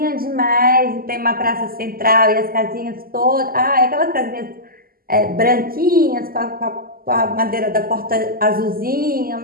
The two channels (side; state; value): left; late; 0.42 ms